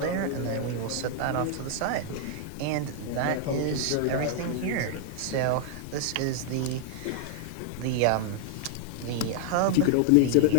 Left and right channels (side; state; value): both; different; correlation 0.00